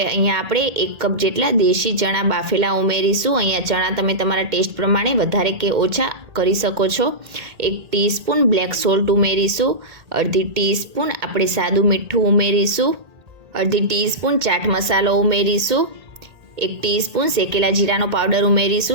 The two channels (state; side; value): late; left; 1.8 ms